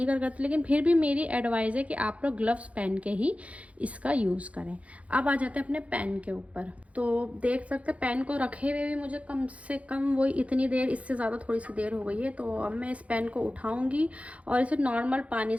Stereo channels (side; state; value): left; late; 0.065 ms